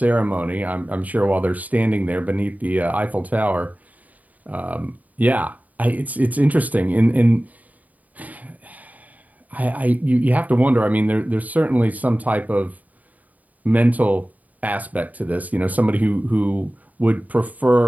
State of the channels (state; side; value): late; left; 0.075 ms